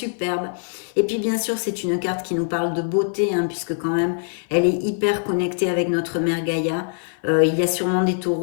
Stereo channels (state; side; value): silent; right; 55 dB below the other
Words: Et puis bien sûr c'est une carte qui nous parle de beauté, hein, puisque quand même elle est hyper connectée avec notre mère Gaïa. Il y a sûrement des